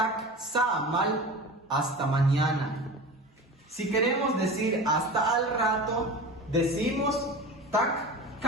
samal, hasta mañana. Si queremos decir hasta al rato, decimos tak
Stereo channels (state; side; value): normal; both; correlation 0.32